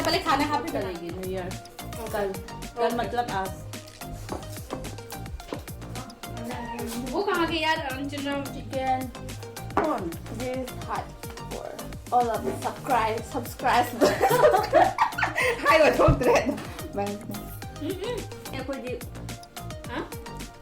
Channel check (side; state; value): both; identical; correlation 1.00